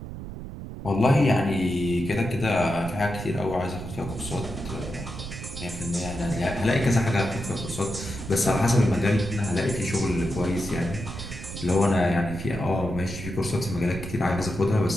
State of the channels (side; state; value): right; noise; rumble, 9 dB below the sound